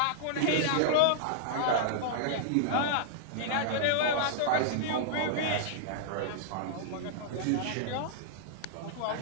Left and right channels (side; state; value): both; different; correlation -0.01